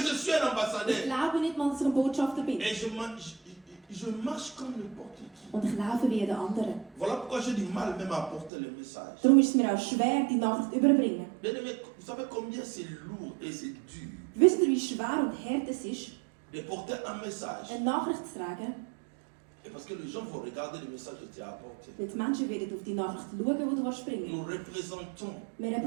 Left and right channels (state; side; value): drops out; left; at 8.5 s